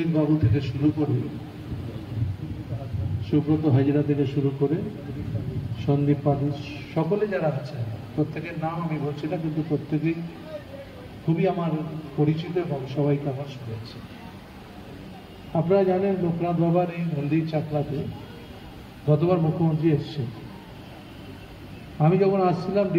বাবু থেকে শুরু করে সুব্রত হাজরা থেকে শুরু করে সন্দীপ পাঠক, সকলে যারা আছে প্রত্যেকের নাম আমি বলছি না, কিন্তু প্রত্যেকেই খুবই আমার পরিচিত এবং সবাইকে আমার শুনেছে। আপনারা জানেন লোকনাথ বাবার এই মন্দির চাকলাতে গতবার মুখ্যমন্ত্রী এসছেন। আমি যখন আসছিলাম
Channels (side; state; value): both; identical; correlation 1.00